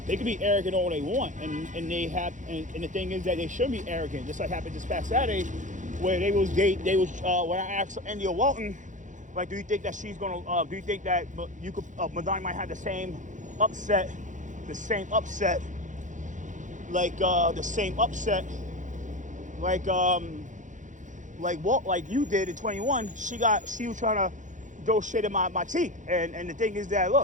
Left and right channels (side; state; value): left; late; 0.36 ms